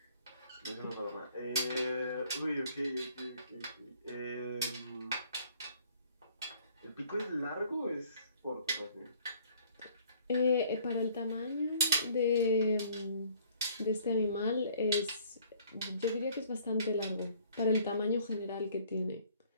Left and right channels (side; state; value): both; inverted; correlation -0.57